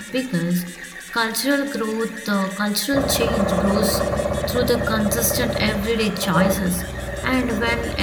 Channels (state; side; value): identical; both; correlation 1.00